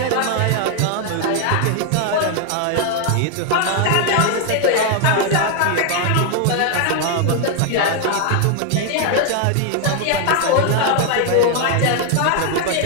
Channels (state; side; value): different; both; correlation 0.00